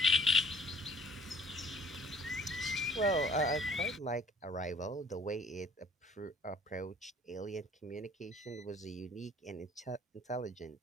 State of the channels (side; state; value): both; normal; correlation 0.53